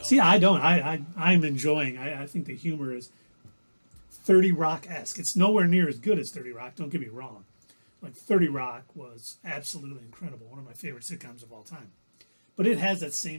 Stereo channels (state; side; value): inverted; both; correlation -1.00